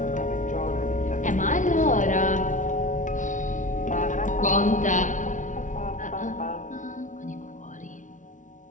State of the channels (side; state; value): right; late; 0.37 ms